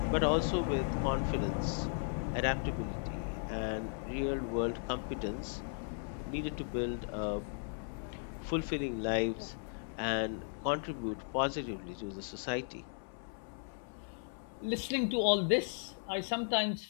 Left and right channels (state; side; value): silent; right; 54 dB below the other